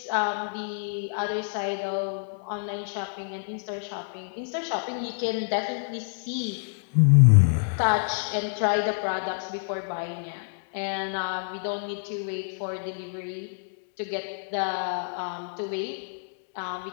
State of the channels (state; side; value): silent; right; 60 dB below the other